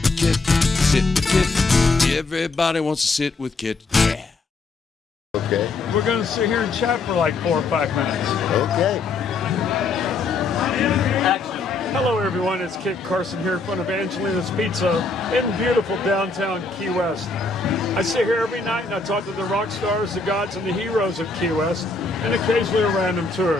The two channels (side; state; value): right; quieter; 3.8 dB